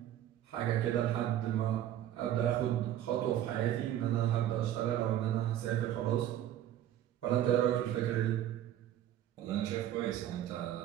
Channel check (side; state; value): left; quieter; 11.8 dB